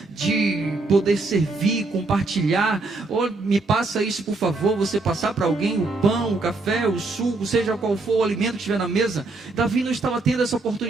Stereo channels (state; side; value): quieter; left; 3.3 dB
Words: de poder servir, compartilhar. Ou me passa isso por favor, você passar para alguém o pão, o café, o suco, seja qual for o alimento que estiver na mesa. Davi não estava tendo essa